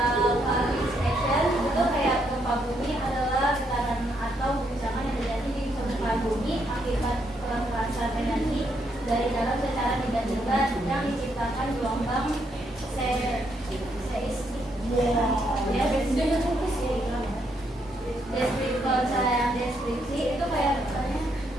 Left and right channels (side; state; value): both; normal; correlation 0.75